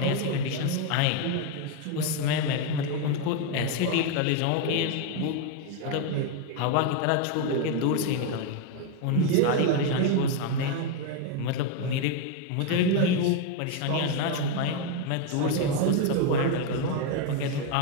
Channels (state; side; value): different; both; correlation 0.02